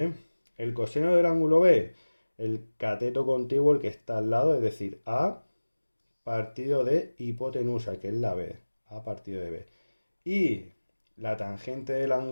El coseno del ángulo B, el cateto contiguo, el que está al lado, es decir, A partido de hipotenusa, que es la B, A partido de B. Y la tangente del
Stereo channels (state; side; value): inverted; both; correlation -1.00